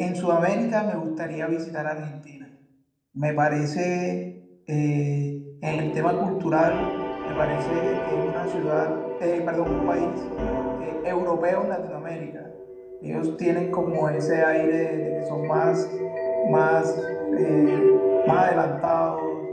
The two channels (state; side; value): identical; both; correlation 1.00